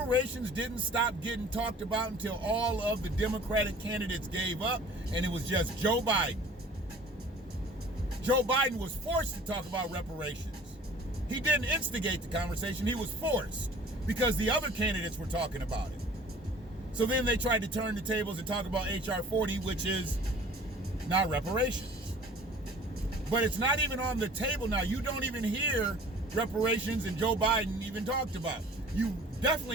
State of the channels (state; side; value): normal; both; correlation 0.47